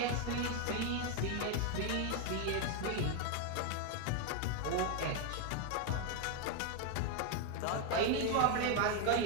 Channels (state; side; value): different; both; correlation 0.01